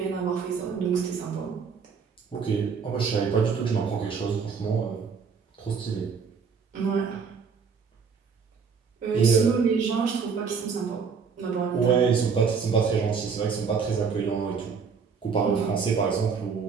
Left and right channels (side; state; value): left; quieter; 5.8 dB